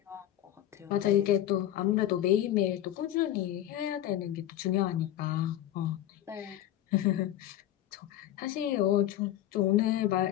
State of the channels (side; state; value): right; quieter; 12.6 dB